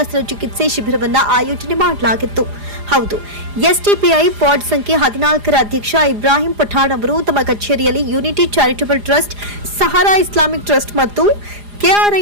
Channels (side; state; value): left; late; 4.9 ms